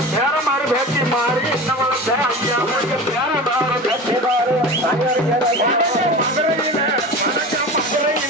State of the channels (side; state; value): both; normal; correlation 0.32